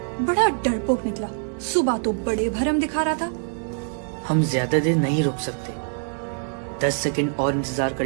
बड़ा डरपोक निकला। सुबह तो बड़े भरम दिखा रहा था। हम ज्यादा देर नहीं रुक सकते। 10 सेकंड और इंतजार कर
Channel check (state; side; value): silent; left; 63 dB below the other